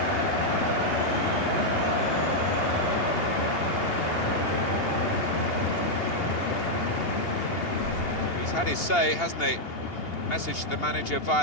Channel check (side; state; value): right; late; 2.8 ms